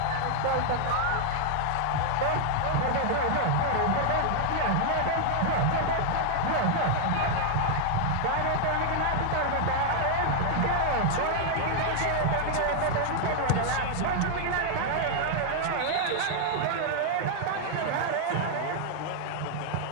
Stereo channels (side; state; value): both; different; correlation 0.00